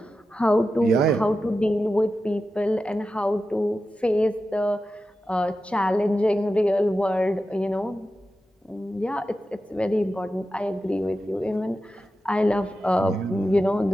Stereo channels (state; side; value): normal; both; correlation 0.92